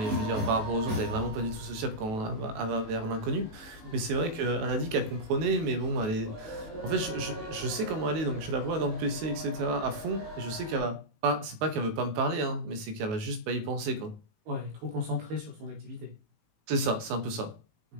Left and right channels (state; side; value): late; left; 19 ms